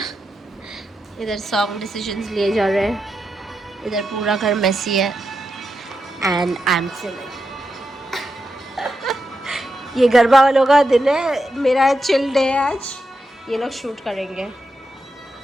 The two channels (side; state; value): both; normal; correlation 0.87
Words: इधर सॉन्ग डिसीजंस लिए जा रहे हैं, इधर पूरा घर मेसी है एंड आई एम चिलिंग। ये गरबा वालों का दिन है, मेरा चिल डे है आज। ये लोग शूट करेंगे।